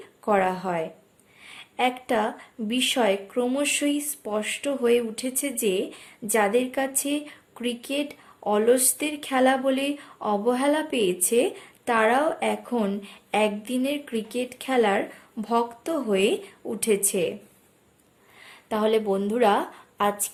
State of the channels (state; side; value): identical; both; correlation 1.00